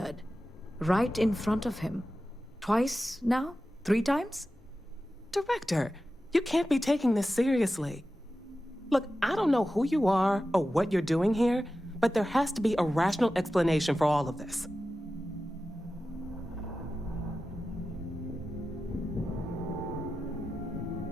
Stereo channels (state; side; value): normal; both; correlation 0.93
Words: right in front of him. Twice now? 3 times? Director, you can't be taking this seriously. Look, I don't know who you are or what you're doing here, but there has to be a rational explanation for all of this.